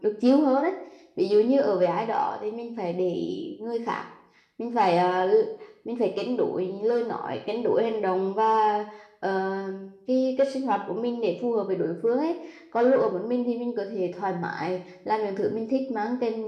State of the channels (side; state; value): both; identical; correlation 1.00